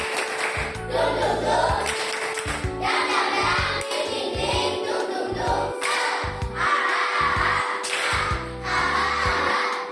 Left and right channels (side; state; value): both; identical; correlation 1.00